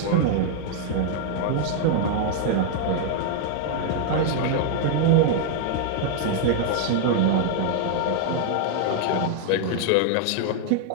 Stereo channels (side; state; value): both; different; correlation 0.00